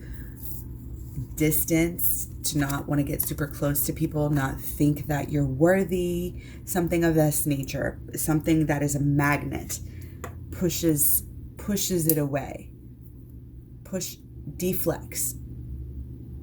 distance, to not want to get super close to people, not think that you're worthy, something of this nature, something that is a magnet, pushes it away, deflects.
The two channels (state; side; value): identical; both; correlation 1.00